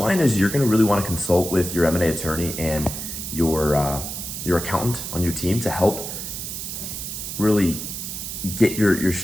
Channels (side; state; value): right; noise; hiss, 6 dB below the sound